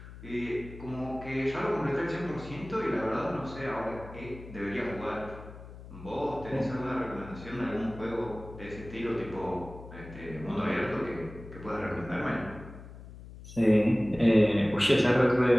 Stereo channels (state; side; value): noise; left; hum, 15 dB below the sound